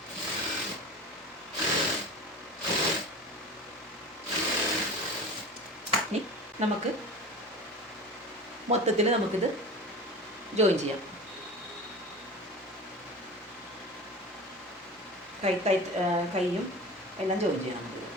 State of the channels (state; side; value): normal; both; correlation 0.33